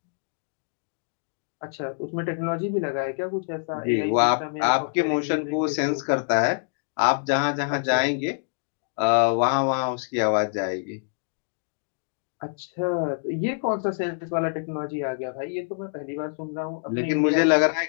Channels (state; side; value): silent; right; digital silence